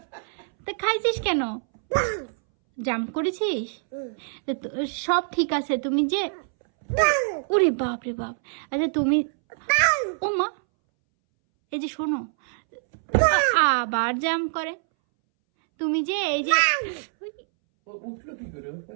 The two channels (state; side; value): silent; left; 62 dB below the other